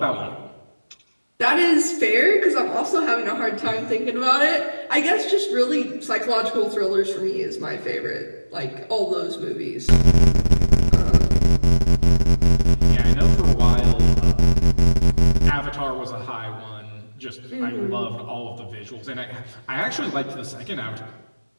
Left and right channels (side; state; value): both; inverted; correlation -1.00